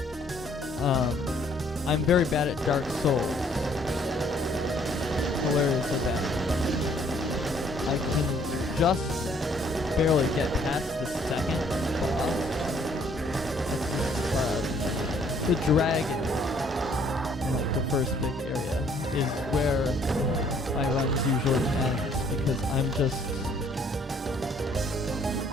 I'm very bad at Dark Souls. Hilariously bad. I can just barely get past the second boss. The dragon, like the first big area, is where my runs usually end because I'm just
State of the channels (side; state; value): both; normal; correlation 0.62